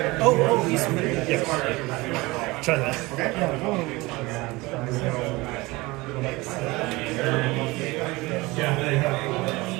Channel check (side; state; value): left; quieter; 22.1 dB